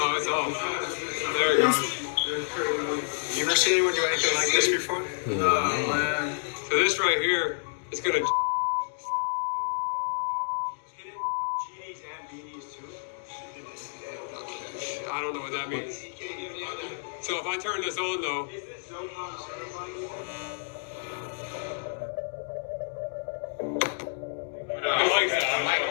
Oh, it's off. There you go. You ever seen anyone do anything like this before? No, man. So this right here is gonna. I don't know what that means. So if I turn this on though.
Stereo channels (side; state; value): right; silent; digital silence